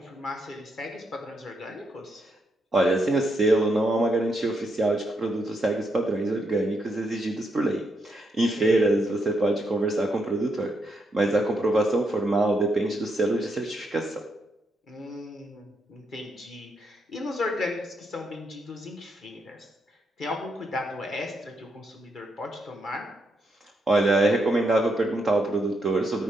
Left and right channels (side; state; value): both; normal; correlation 0.79